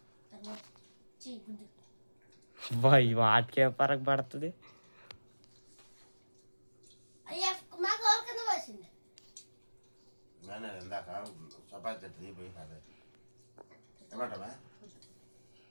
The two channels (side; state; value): both; inverted; correlation -1.00